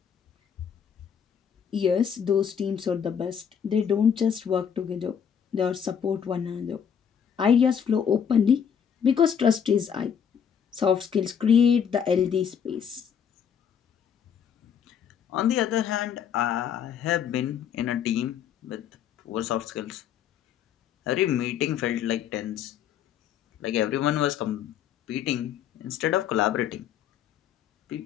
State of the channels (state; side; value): quieter; right; 8.0 dB